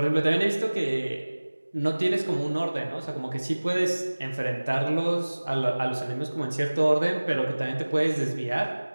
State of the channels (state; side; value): inverted; both; correlation -1.00